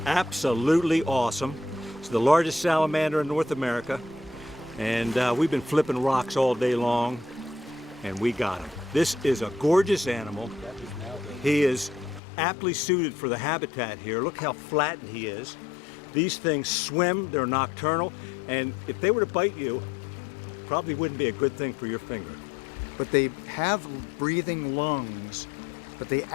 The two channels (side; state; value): right; drops out; at 12.2 s